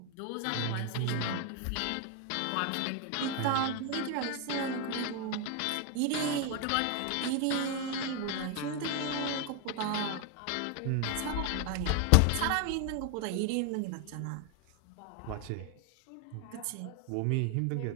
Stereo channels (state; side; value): different; both; correlation 0.01